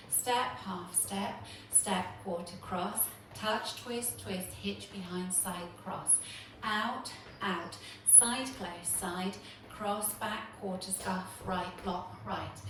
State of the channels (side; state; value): both; identical; correlation 1.00